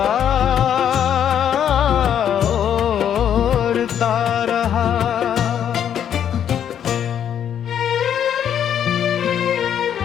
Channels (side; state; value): right; quieter; 9.3 dB